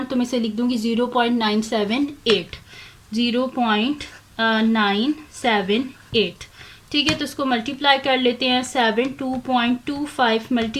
तो मैं इसे लिख दूंगी 0.978 0.978। ठीक है, तो इसको मल्टीप्लाई कर लेते हैं। 72.25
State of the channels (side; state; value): both; identical; correlation 1.00